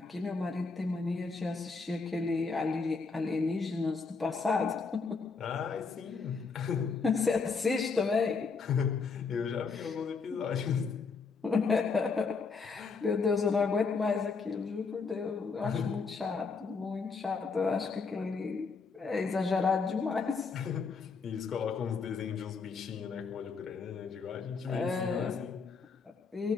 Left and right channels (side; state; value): right; quieter; 4.8 dB